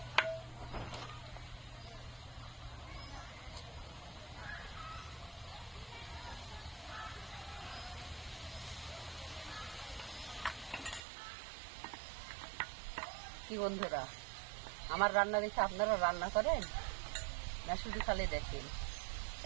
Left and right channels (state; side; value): drops out; left; at 11.1 s